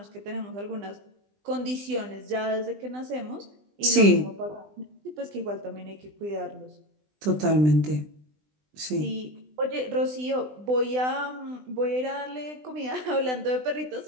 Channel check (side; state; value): left; late; 20 ms